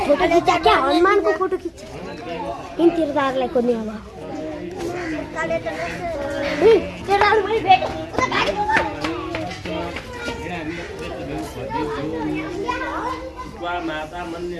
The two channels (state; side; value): identical; both; correlation 1.00